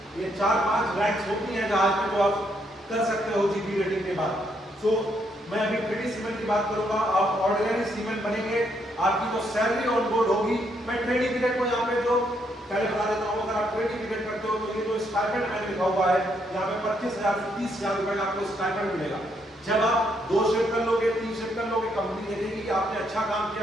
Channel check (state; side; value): normal; both; correlation 0.74